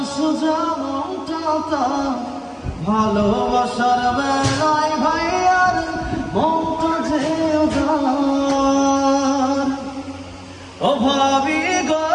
সোজা মমতা ভালোবাসার বেলায় ভাইয়ার মমতা যে উদার। ও ভাবি গো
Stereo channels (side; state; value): both; identical; correlation 1.00